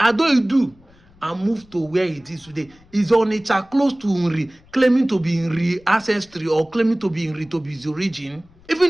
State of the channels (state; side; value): noise; left; rumble, 29 dB below the sound